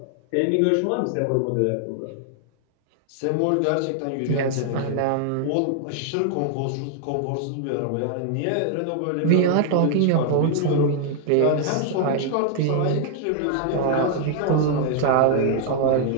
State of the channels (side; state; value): both; different; correlation 0.00